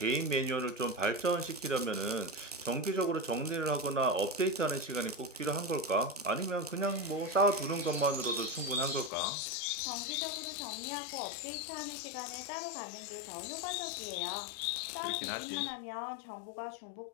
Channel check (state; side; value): drops out; right; at 9.1 s